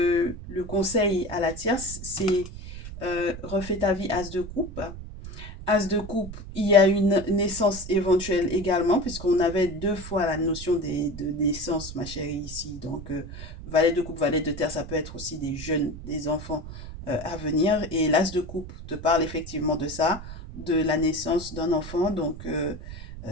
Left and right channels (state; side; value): noise; right; rumble, 12 dB below the sound